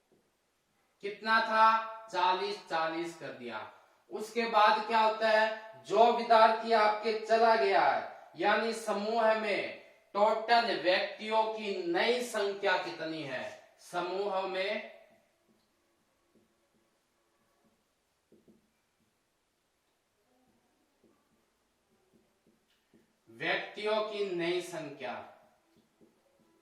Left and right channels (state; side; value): identical; both; correlation 1.00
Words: कितना था, 40 कर दिया। उसके बाद क्या होता है, जो विद्यार्थी आपके चला गया है, यानी समूह में टोटल व्यक्तियों की नई संख्या कितनी है, समूह में व्यक्तियों की नई संख्या,